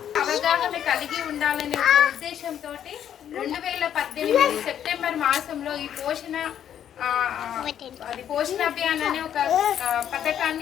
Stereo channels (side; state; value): right; quieter; 9.7 dB